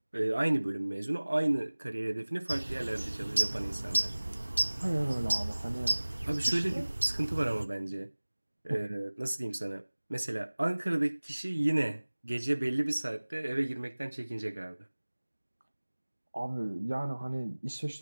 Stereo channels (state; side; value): inverted; both; correlation -1.00